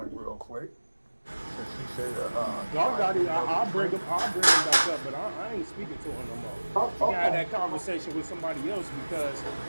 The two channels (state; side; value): inverted; both; correlation -1.00